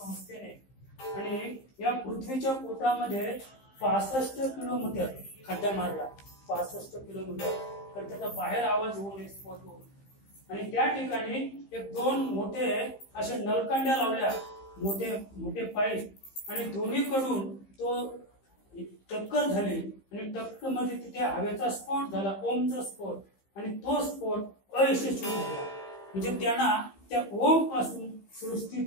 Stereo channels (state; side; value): late; right; 15 ms